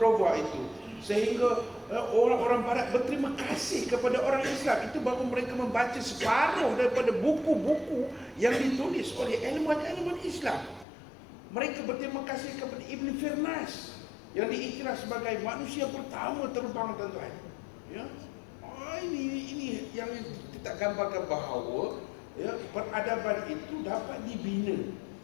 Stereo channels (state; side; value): drops out; right; at 10.9 s